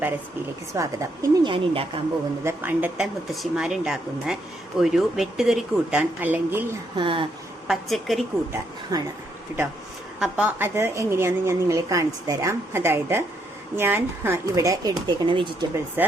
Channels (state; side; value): normal; both; correlation 0.75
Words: റെസിപ്പിയിലേക്ക് സ്വാഗതം. ഇന്ന് ഞാൻ ഉണ്ടാക്കാൻ പോകുന്നത് പണ്ടത്തെ മുത്തശ്ശിമാരുണ്ടാക്കുന്ന ഒരു വെട്ടുകറി കൂട്ടാൻ അല്ലെങ്കിൽ പച്ചക്കറി കൂട്ടാൻ ആണ് കേട്ടോ. അപ്പോൾ അത് എങ്ങനെയാണെന്ന് ഞാൻ നിങ്ങളെ കാണിച്ചു തരാം. അതായത് ഞാൻ ഇവിടെ എടുത്തേക്കുന്ന വെജിറ്റബിൾസ്,